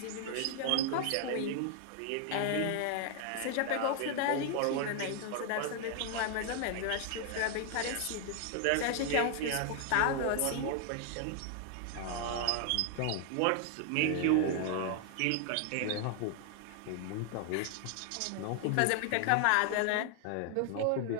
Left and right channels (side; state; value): both; different; correlation 0.00